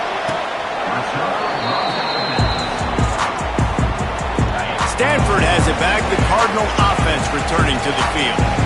Stanford has it back. The Cardinal offense returning to the field.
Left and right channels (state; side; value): identical; both; correlation 1.00